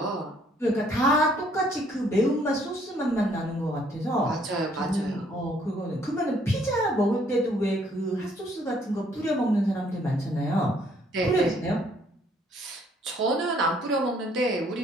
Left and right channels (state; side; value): normal; both; correlation 0.64